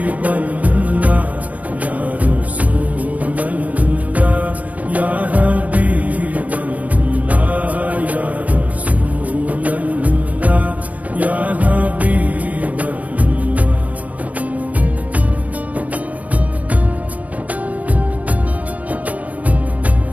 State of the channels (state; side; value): late; left; 0.072 ms